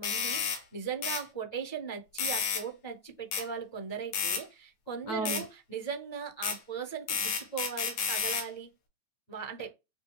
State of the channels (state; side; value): late; right; 9.5 ms